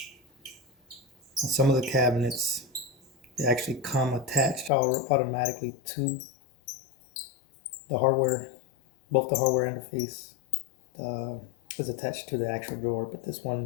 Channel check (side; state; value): right; drops out; at 4.7 s